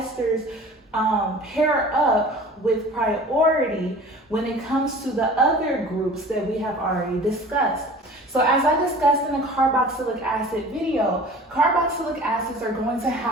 pair up with priority when it comes to the other groups that we have already discussed. So as I discussed in the carboxylic acid video, carboxylic acids are going to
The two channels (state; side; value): normal; both; correlation 0.43